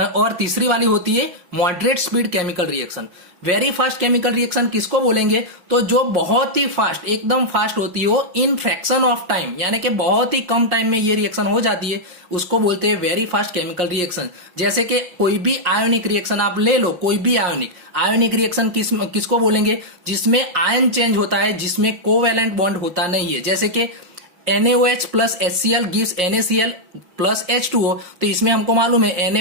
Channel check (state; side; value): late; left; 5.6 ms